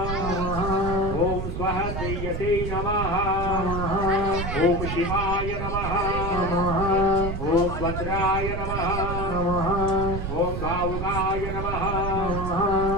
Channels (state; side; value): noise; right; rumble, 4 dB below the sound